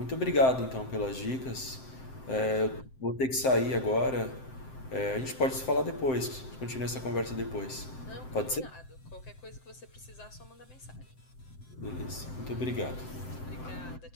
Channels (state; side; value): late; right; 7.7 ms